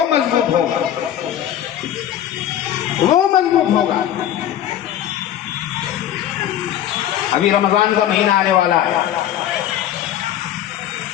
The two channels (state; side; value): quieter; right; 11.2 dB